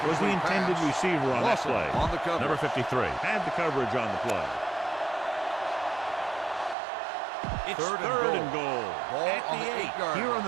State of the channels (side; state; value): left; drops out; at 6.8 s